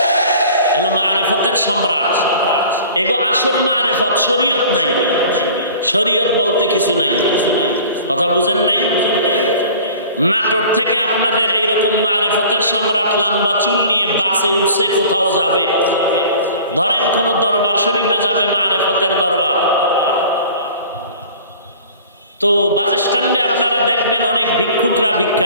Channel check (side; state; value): both; inverted; correlation -0.45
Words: এলো মারেফতের সম্রাট। এগো আসল মারেফত, শরীয়ত নাই। শরীয়ত বলতে কিছু নাই। কথা বুঝেন নাই? নাটোর থেকে আপনাদের এইরকম মারেফতের সম্রাট লম্বা চুল নিয়ে বাসে উঠছে, কোথাও যাবে, ধরেন কোন দরবার শরীফে যাবে, মারেফতের দরবার। তো বাস স্ট্যান্ডে আপনারা দেখবেন অনেক ভিক্ষুকরা